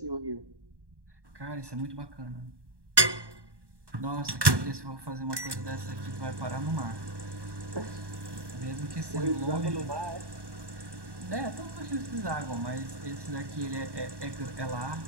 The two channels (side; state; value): left; late; 1.1 ms